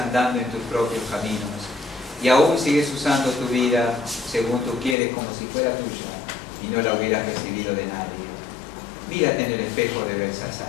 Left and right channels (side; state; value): right; drops out; at 5.0 s